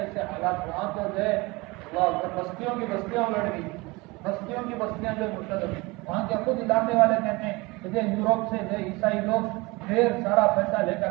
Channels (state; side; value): quieter; left; 23.9 dB